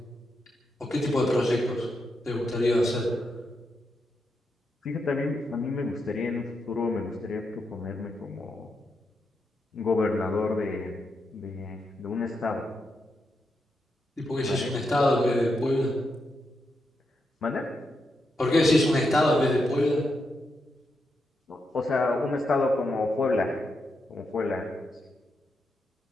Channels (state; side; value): normal; both; correlation 0.84